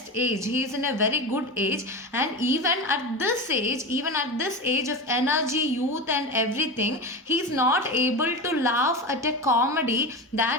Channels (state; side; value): normal; both; correlation 0.24